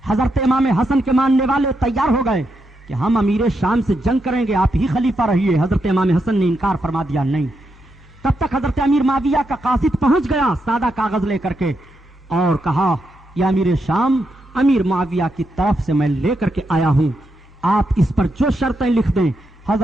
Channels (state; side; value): normal; both; correlation 0.83